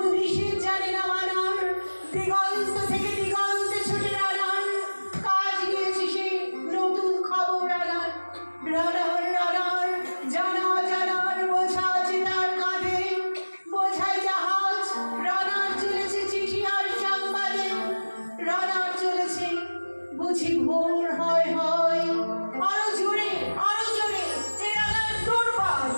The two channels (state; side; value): inverted; both; correlation -1.00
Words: নিষেধ জানে না মানার, দিগন্ত থেকে দিগন্তে ছুটে রানার কাজ গিয়েছে সে নতুন খবর রানার। রানার রানার জানা জানার বোঝা আছে তার কাঁধে, বোঝায় জাহাজ, রানার চলেছে চিঠি আর সংবাদে, রানার চলেছে বুঝি ভোর হয় হয়, আরো জোরে এ রানার দুর্বার